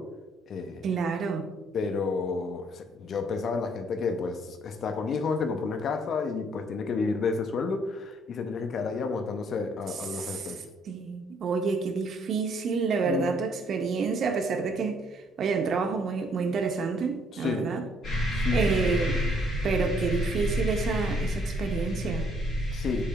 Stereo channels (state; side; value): normal; both; correlation 0.66